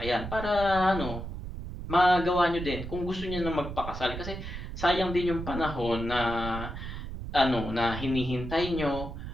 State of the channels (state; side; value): noise; right; rumble, 8 dB below the sound